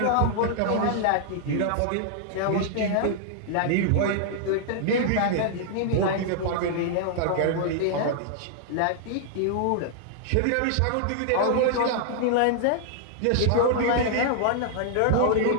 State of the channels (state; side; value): different; both; correlation -0.01